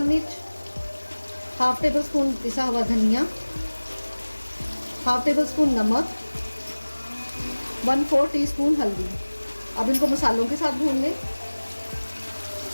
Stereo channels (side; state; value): both; inverted; correlation -1.00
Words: मिर्च, हाफ टेबल स्पून पिसा हुआ धनिया, हाफ टेबल स्पून नमक, 1/4 टीस्पून हल्दी। अब इनको मसालों के साथ भून लें।